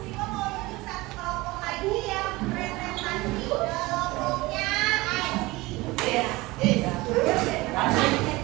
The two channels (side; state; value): left; quieter; 21.2 dB